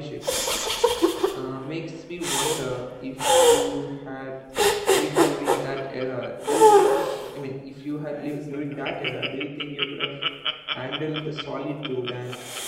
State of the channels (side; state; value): both; identical; correlation 1.00